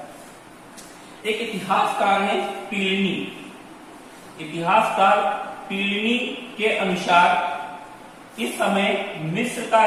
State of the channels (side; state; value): both; identical; correlation 1.00